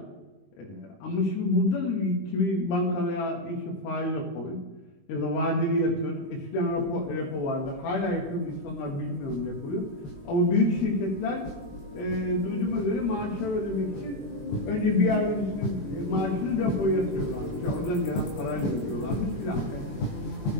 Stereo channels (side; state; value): right; late; 21 ms